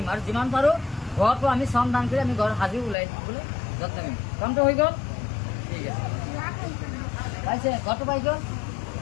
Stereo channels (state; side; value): drops out; right; at 3.0 s